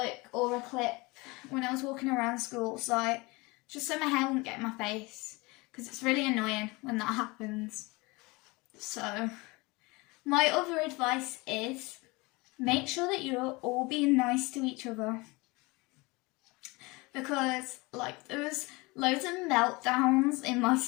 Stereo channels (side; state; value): right; quieter; 24.6 dB